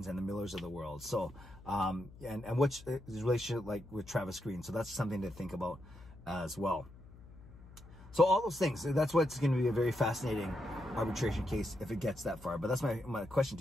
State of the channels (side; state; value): left; noise; hum, 19 dB below the sound